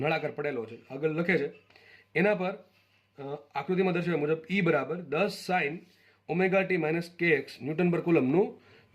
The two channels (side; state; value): both; identical; correlation 1.00